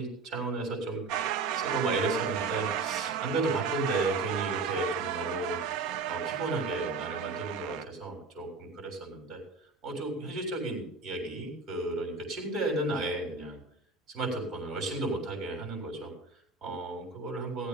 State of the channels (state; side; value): quieter; left; 3.9 dB